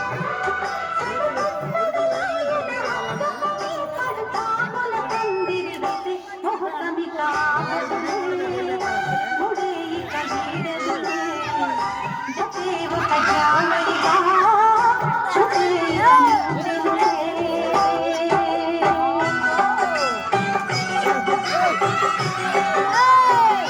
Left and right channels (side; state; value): both; identical; correlation 1.00